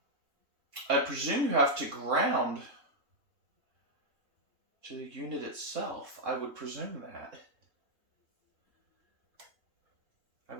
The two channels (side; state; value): left; late; 3.6 ms